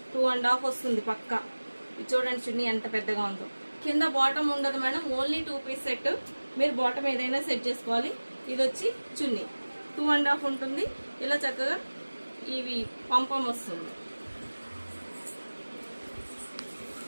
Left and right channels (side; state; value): both; inverted; correlation -1.00